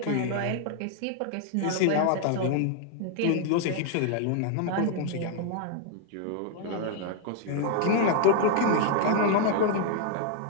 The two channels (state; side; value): different; both; correlation 0.00